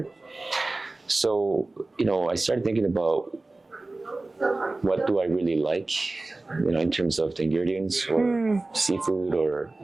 So I started thinking about what do I really like, in terms of the ingredients or seafood or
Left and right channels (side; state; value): left; quieter; 3.1 dB